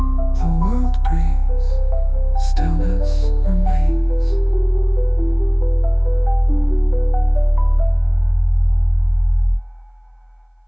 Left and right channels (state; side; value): identical; both; correlation 1.00